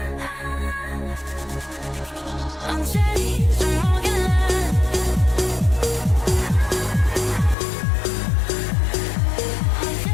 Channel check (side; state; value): right; drops out; at 7.6 s